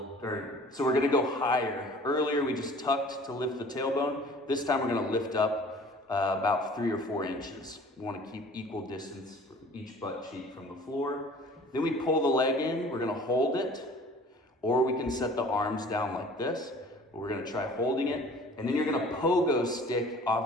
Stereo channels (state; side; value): normal; both; correlation 0.48